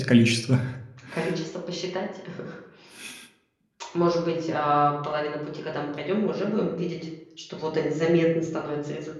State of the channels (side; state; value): both; identical; correlation 1.00